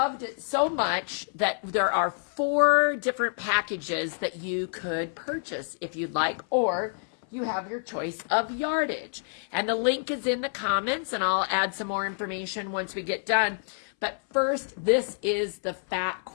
it so much that there are 4 different packages that you could purchase if you'd like, or you have your choice of yardage. And the link is in the comments, and I'll add some more information once we get done. But first, this is the fat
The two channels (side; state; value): right; silent; 59 dB below the other